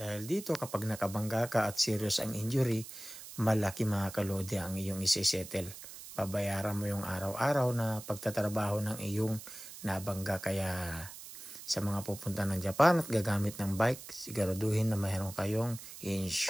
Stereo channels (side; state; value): right; noise; hiss, 13 dB below the sound